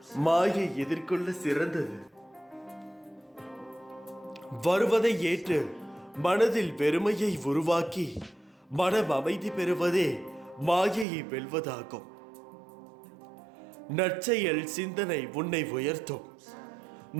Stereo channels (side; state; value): left; drops out; at 11.1 s